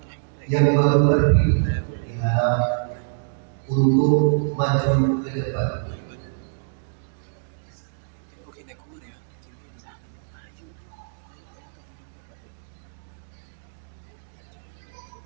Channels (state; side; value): silent; left; digital silence